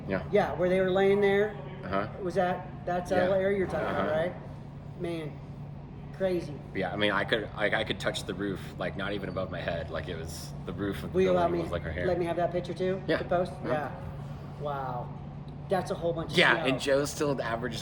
Yeah. Yeah, where they were laying there. Uh-huh. That's Yeah. the area you're talking about, Uh-huh. right? Man, crazy. Yeah, I mean, I could touch the roof, like not even above my head, like it was the roof of the Will you allow building me? was like her hair. Let me have that picture too. Yeah. To post. Uh-huh. Yeah. Wow. That's a whole bunch of Yeah, snow. and Joe still averages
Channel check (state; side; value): identical; both; correlation 1.00